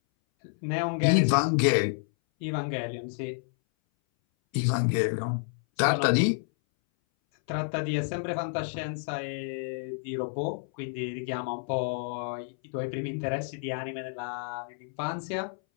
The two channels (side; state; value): right; silent; 58 dB below the other